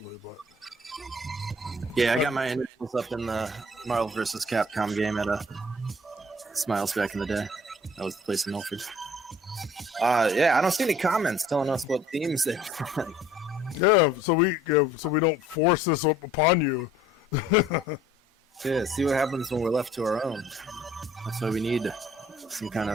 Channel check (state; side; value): normal; both; correlation 0.54